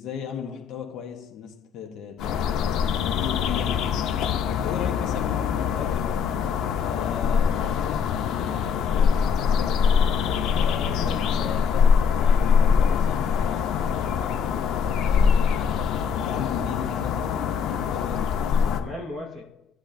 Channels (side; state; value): right; quieter; 6.6 dB